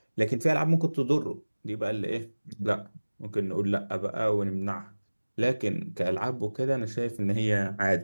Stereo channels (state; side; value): inverted; both; correlation -1.00